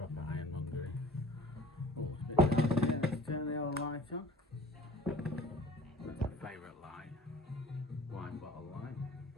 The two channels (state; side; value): normal; both; correlation 0.45